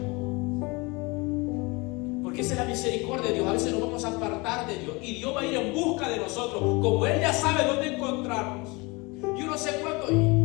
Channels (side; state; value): right; quieter; 26.1 dB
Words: Porque esa es la misericordia de Dios. A veces nos vamos a apartar de Dios y Dios va a ir en busca de nosotros, como Él ya sabe dónde encontrarnos. Yo no sé cuándo.